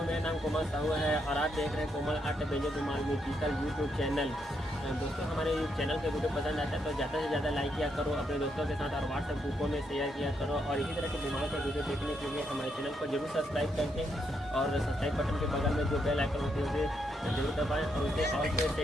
मेरा नाम कोमल साहू है और आप देख रहे हैं Komal art banjo Dhumal musical YouTube channel. दोस्तों हमारे चैनल के वीडियो पसंद आता है तो ज़्यादा से ज़्यादा लाइक किया करो अपने दोस्तों के साथ और व्हाट्सएप ग्रुपों में शेयर किया करो। और इसी तरह के धुमाल का वीडियो देखने के लिए हमारे चैनल को जरूर सब्सक्राइब करके और सब्सक्राइब बटन के बगल में जो बेल आइकन होती है उसे जरूर दबाएँ और उसे ऑल पे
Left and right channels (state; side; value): normal; both; correlation 0.78